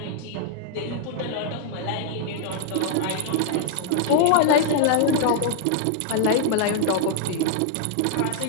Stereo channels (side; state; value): both; different; correlation -0.01